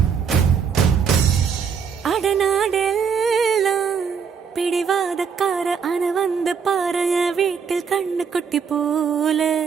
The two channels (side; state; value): left; quieter; 6.4 dB